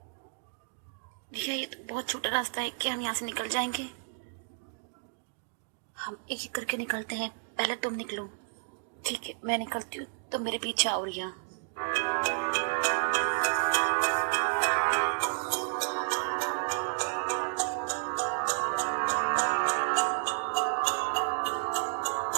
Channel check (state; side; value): silent; left; digital silence